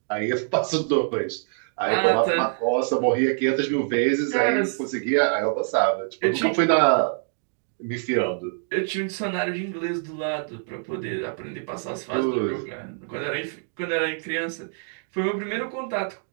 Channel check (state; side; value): silent; left; digital silence